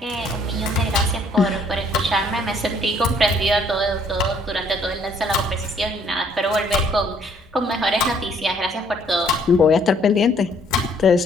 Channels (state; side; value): normal; both; correlation 0.63